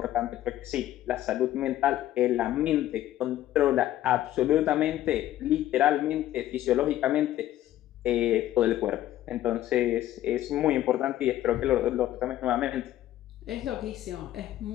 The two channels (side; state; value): right; quieter; 13.4 dB